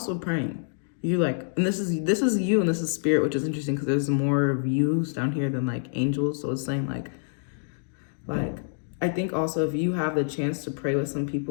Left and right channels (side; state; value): right; silent; digital silence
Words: praying. You like, and this is you and this is spirit, which is interesting because there's more views down here than like angels. So it's saying like I think also if you have the chance to pray with some